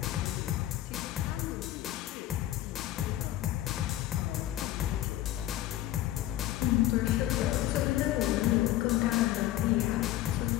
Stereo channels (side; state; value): right; quieter; 13.9 dB